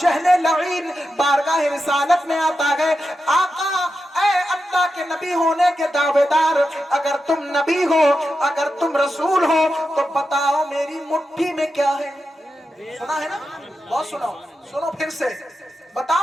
लईन बारगाह रिसालत में आता गए, आका ऐ अल्लाह के नबी होने के दावेदार, अगर तुम नबी हो, अगर तुम रसूल हो, तो बताओ मेरी मुट्ठी में क्या है? सुना है ना? बहुत सुनो, सुनो फिर से,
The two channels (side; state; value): both; normal; correlation 0.89